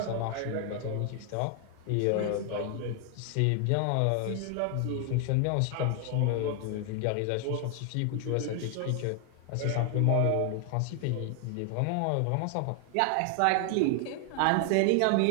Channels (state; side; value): different; both; correlation 0.00